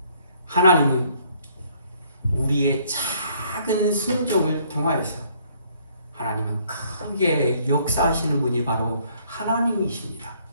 하나님은 우리의 작은 순종을 통하여서 하나님은 크게 역사하시는 분이 바로 하나님이십니다.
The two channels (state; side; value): inverted; both; correlation -0.64